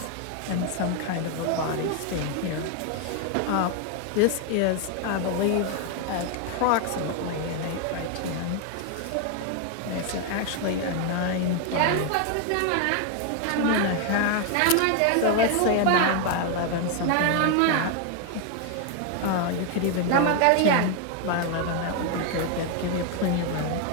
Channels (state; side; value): different; both; correlation 0.01